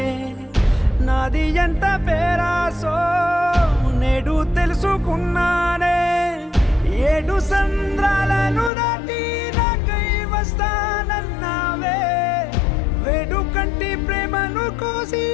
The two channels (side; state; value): right; drops out; at 8.7 s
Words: నాది ఎంత పేరాసో నేడు తెలుసుకున్నానే 7 సంద్రాలను దాటి నాకై వస్తానన్నావే వేడు కంటి ప్రేమను కోసి